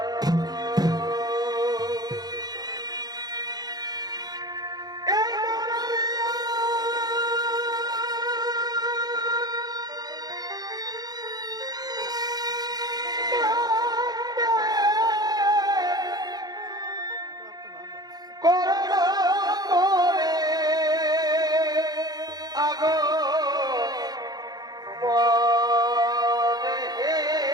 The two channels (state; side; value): late; left; 0.19 ms